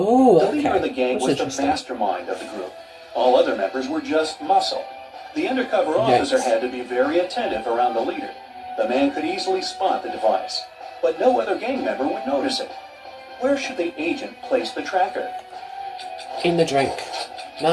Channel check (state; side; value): identical; both; correlation 1.00